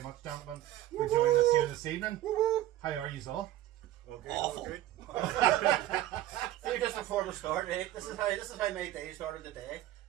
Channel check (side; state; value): left; quieter; 13.8 dB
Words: much, gentlemen, for joining us here this evening. How are you all? Okay, Awful. okay. See, just before the start, right? This is how my day started today.